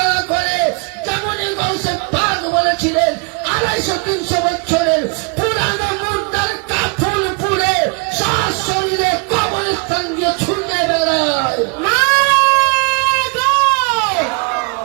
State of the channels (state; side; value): quieter; left; 33.3 dB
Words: করে। যেমনই গৌসে পাক বলেছিলেন 250-300 বছরের পুরানো মুর্দার কাফন পুড়ে সশরীরে কবরস্থান দিয়ে ছুটে বেড়ায়।